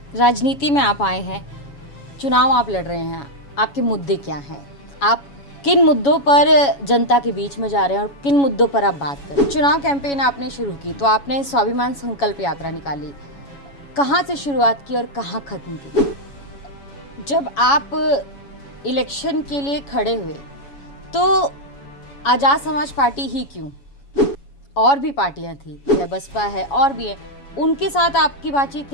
राजनीति में आप आए हैं, चुनाव आप लड़ रहे हैं, आपके मुद्दे क्या हैं? आप किन मुद्दों पर जनता के बीच में जा रहे हैं और किन मुद्दों पर आप बात कर रहे हैं? चुनाव कैंपेन आपने शुरू की तो आपने स्वाभिमान संकल्प यात्रा निकाली। कहाँ से शुरुआत की और कहाँ खत्म की? जब आप इलेक्शन के लिए खड़े हुए तो आज़ाद समाज पार्टी ही क्यों? और भी पार्टियां थी, है बसपा है और भी है, उनके साथ आपकी बातचीत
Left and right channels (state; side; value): late; right; 7.2 ms